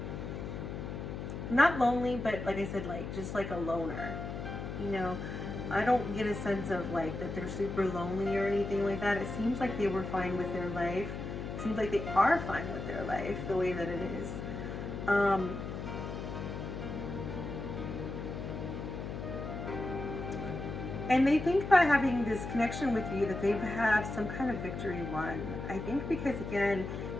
Not lonely, but like I said, like just like a loner. You know, I don't get a sense of like that they're super lonely or anything like that. It seems like they were fine with their life. It seems like they are fine with their life the way that it is. And they think by having this connection with you that they have some kind of victory won. I think because again,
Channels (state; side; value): noise; left; hum, 6 dB below the sound